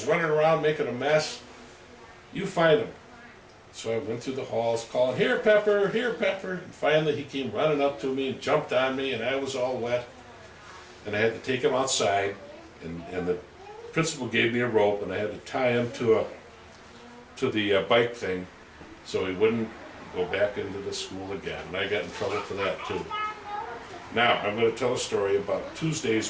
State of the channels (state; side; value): identical; both; correlation 1.00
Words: running around making a mess. You find him. So I went through the halls calling, here Pepper, and finally he came running up to me and jumped on me and I was all wet. And I had to take him outside and the principal gave me a rope and I had to tie him to the bike thing so he wouldn't go back into the school again. And I got in trouble for that too. Now I'm going to tell a story about